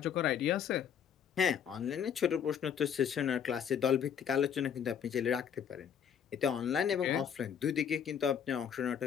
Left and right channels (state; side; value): quieter; right; 8.2 dB